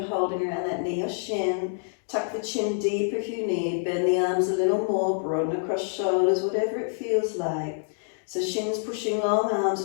holding around that knee or shin. Tuck the chin deep if you need. Bend the arms a little more. Broaden across shoulders, whatever it feels like. So shins pushing long, arms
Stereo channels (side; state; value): right; silent; digital silence